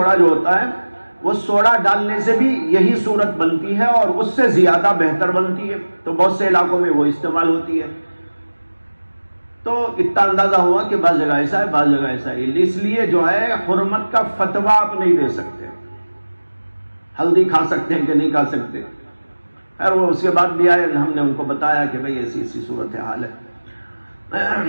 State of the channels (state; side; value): inverted; both; correlation -1.00